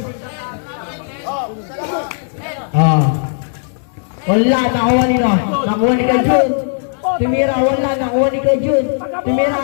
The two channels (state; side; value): silent; right; digital silence